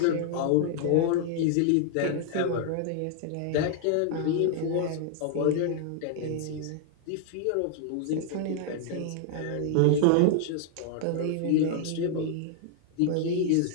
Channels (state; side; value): different; both; correlation 0.00